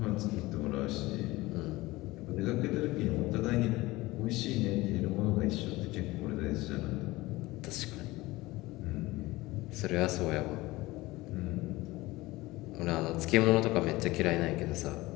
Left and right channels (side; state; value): right; quieter; 20.0 dB